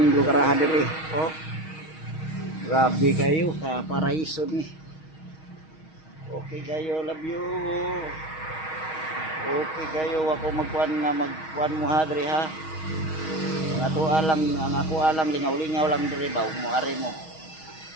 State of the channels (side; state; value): right; late; 6.3 ms